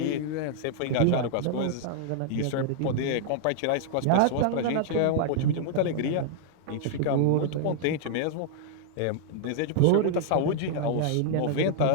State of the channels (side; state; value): both; different; correlation -0.01